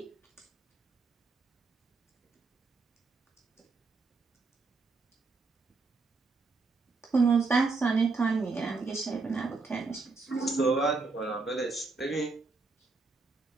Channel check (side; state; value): left; quieter; 4.0 dB